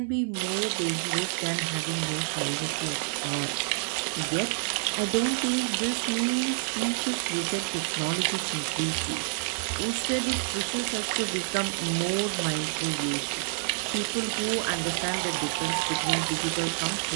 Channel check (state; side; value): silent; left; digital silence